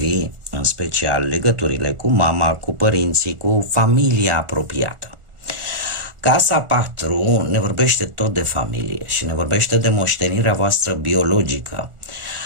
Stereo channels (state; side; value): late; left; 1.4 ms